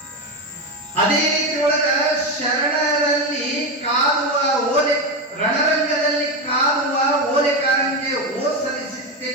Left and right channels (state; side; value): normal; both; correlation 0.14